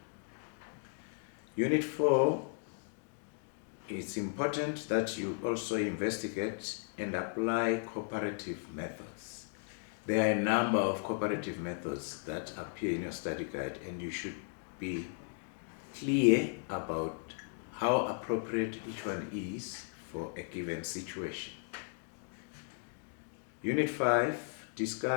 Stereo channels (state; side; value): silent; right; 54 dB below the other